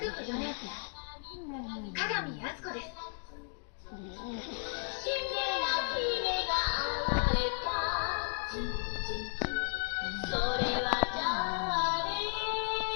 4年、鏡靖子です。それ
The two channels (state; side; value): silent; right; digital silence